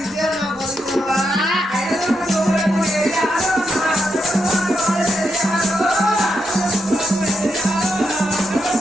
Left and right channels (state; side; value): normal; both; correlation 0.83